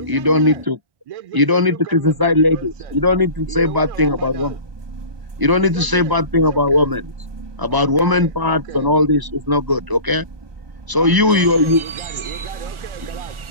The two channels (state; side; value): late; left; 1.0 ms